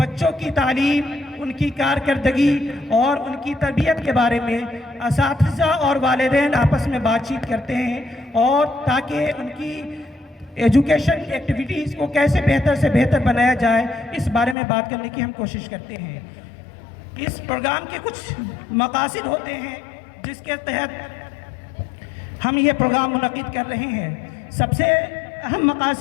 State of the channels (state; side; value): drops out; right; at 14.6 s